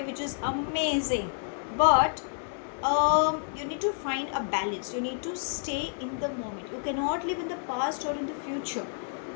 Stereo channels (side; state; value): right; silent; 58 dB below the other